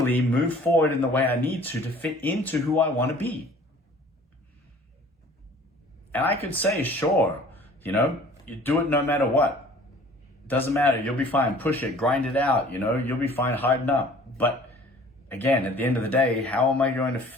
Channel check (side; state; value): both; normal; correlation 0.50